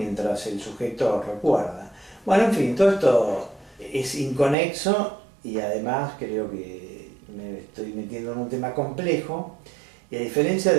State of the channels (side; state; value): left; drops out; at 4.5 s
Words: el sujeto recuerda. Bueno, en fin, todo esto es inconexo y además creo que me estoy metiendo en un tema complejo, y a diferencia